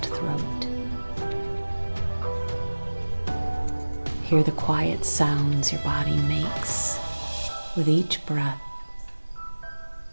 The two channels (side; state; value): both; inverted; correlation -1.00